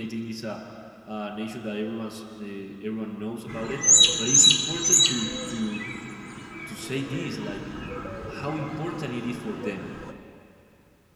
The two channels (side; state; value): both; identical; correlation 1.00